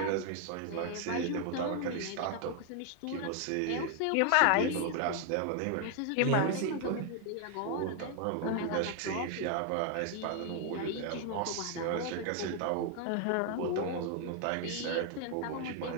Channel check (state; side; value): different; both; correlation 0.00